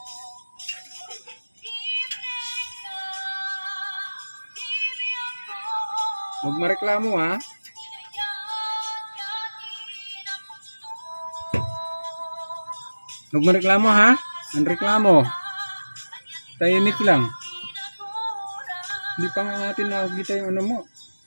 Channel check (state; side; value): inverted; both; correlation -1.00